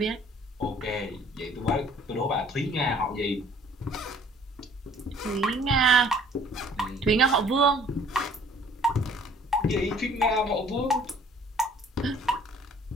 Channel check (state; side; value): normal; both; correlation 0.56